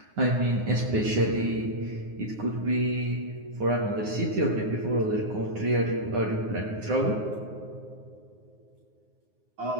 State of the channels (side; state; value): left; late; 9.6 ms